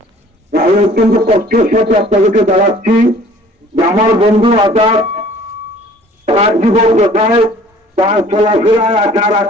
আমি অত্যন্ত কষ্টের সাথে আপনাদেরকে জানাচ্ছি যে আমার বন্ধু আজাদ তার জীবন কোথায়, তার চলাফেরায় আচার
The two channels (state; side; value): normal; both; correlation 0.52